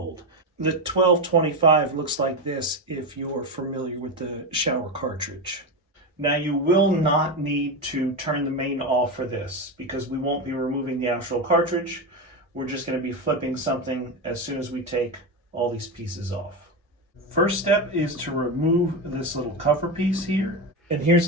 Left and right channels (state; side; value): normal; both; correlation 0.15